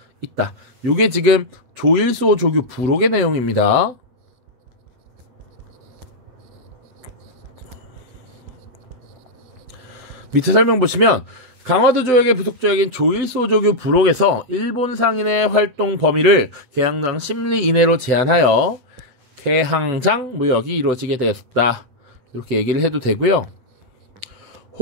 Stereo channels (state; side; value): late; left; 7.9 ms